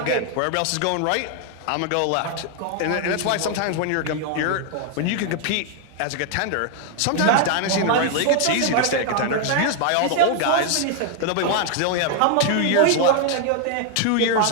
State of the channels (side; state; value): both; different; correlation 0.00